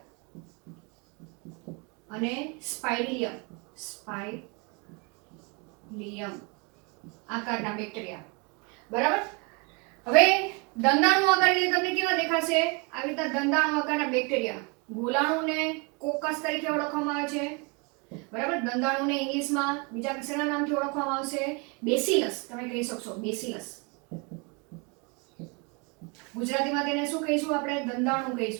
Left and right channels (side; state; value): left; quieter; 31.0 dB